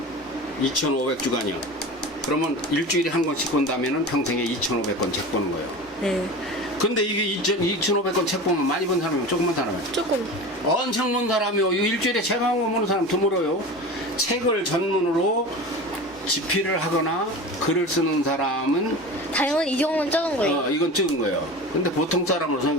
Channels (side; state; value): both; normal; correlation 0.32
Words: 2,500주간이요. 그러면 일주일에 한 권씩 본다면은 평생에 2,500권 책 보는 거예요. 네. 근데 이게 2,500권 책 보면 많이 본 사람이면 조금만 사람이에요. 조금. 엄청 본 사람이요. 일주일에 책 한 권 보는 사람 드물어요. 책을 전문으로 집필을 하거나 글을 쓰는 사람은 당연히 이 경우는 적은 거예요. 이건 적은 거예요. 근데 보통 사람으로서